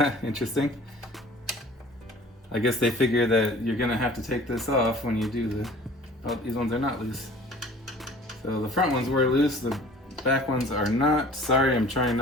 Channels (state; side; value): normal; both; correlation 0.47